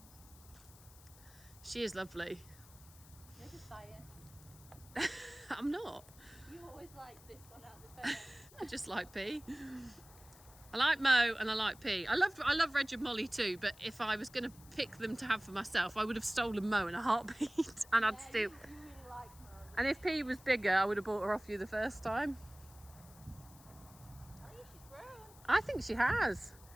She is lovely. You're just biased. I'm not. You always like this one out of the pair. I just like P. I like Mo and I like P. I love Reg and Molly too, but if I was going to pick them to have for myself, I would have stolen Mo in a heartbeat. And I'd still... You really like Mo. And if P was bigger, I would have bought her off you the first time. I think she has.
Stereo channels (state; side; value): noise; left; hiss, 22 dB below the sound